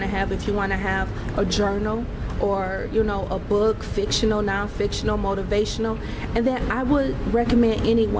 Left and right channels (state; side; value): identical; both; correlation 1.00